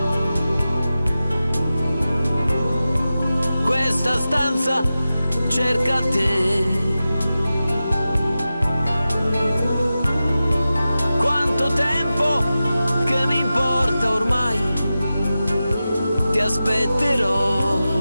Questa stanza cerca te. Quanto tempo che mi importa ormai, ti aspetterò.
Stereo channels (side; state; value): both; inverted; correlation -0.93